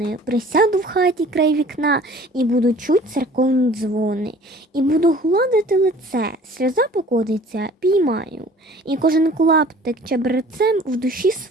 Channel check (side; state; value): both; normal; correlation 0.49